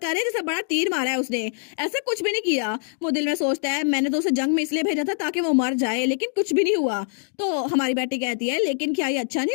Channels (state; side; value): silent; right; 62 dB below the other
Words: रहे हैं जैसे बड़ा तीर मारा है उसने। ऐसा कुछ भी नहीं किया। वो दिल में सोचता है मैंने तो उसे जंग में इसलिए भेजा था ताकि वो मर जाए, लेकिन कुछ भी नहीं हुआ। तो हमारी बेटी कहती है लेकिन क्या ये अच्छा